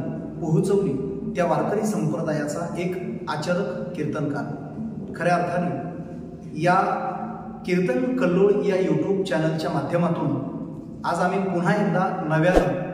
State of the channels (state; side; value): identical; both; correlation 1.00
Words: पोहोचवली, त्या वारकरी संप्रदायाचा एक आचरक कीर्तनकार। खऱ्या अर्थाने या कीर्तन कल्लोळ या यूट्यूब चॅनलच्या माध्यमातून आज आम्ही पुन्हा एकदा नव्याने